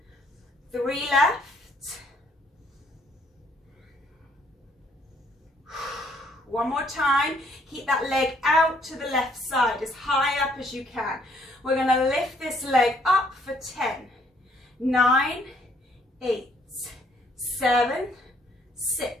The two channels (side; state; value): both; normal; correlation 0.66